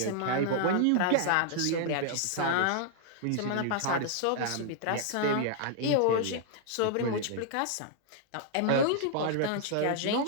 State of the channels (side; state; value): both; different; correlation -0.01